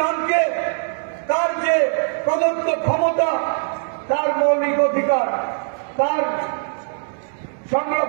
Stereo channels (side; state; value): left; silent; digital silence